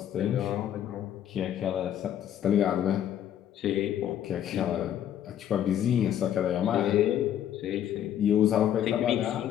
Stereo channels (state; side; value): quieter; right; 10.6 dB